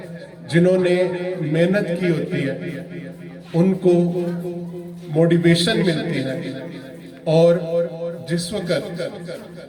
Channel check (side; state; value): both; identical; correlation 1.00